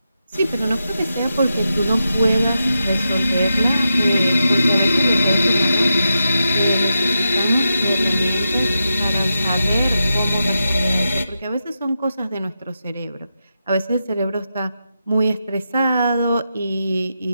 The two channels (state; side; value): inverted; both; correlation -0.88